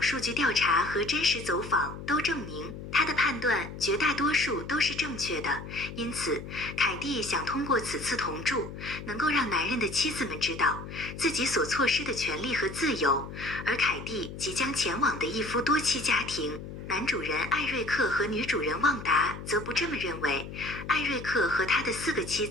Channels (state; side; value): noise; left; hum, 10 dB below the sound